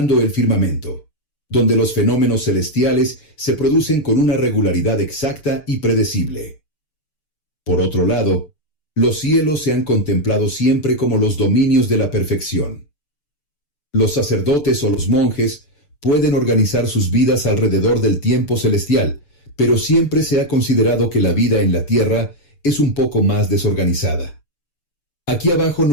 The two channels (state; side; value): late; right; 6.9 ms